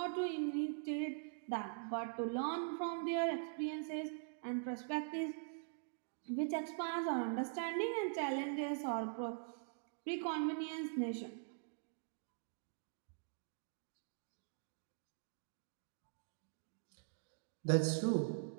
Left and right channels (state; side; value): silent; left; digital silence